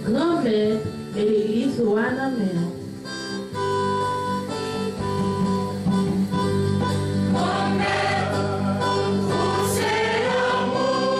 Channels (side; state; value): both; identical; correlation 1.00